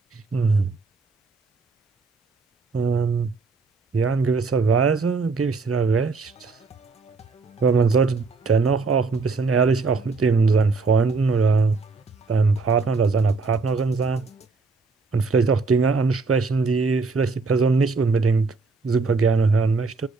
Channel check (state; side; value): quieter; left; 4.2 dB